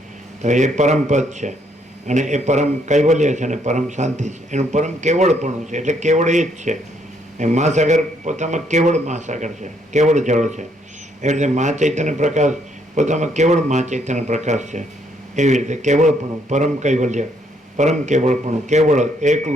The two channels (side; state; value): both; normal; correlation 0.71